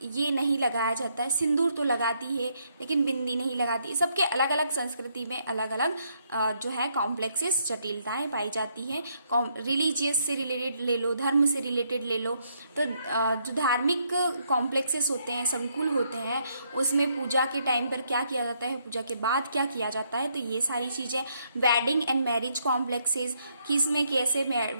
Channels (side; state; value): both; inverted; correlation -0.73